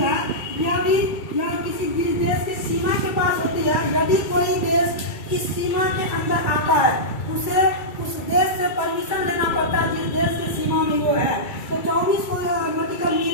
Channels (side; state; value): right; late; 2.3 ms